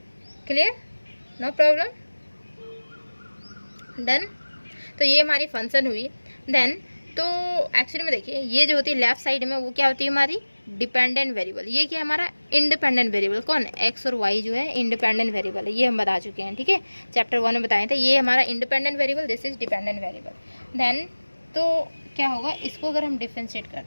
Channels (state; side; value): inverted; both; correlation -1.00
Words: क्लियर, नो प्रॉब्लम, डन। तो ये हमारी फंक्शन हुई। देन तो एक्चुअली में देखिए ये जो होती है लेफ्ट साइड में वो क्या होती है? हमारी डिपेंडेंट वेरिएबल। ये क्या है? हमारा इंडिपेंडेंट वेरिएबल। कौन? एक्स और वाई जो है इंडिपेंडेंट वेरिएबल है, ये हम बता चुके हैं, ठीक है, चैप्टर 1 में बताए थे। ये हमारा independent variable, this is dependent variable. Then तो क्या होगा? इसको अगर हम डिफरेंशिएट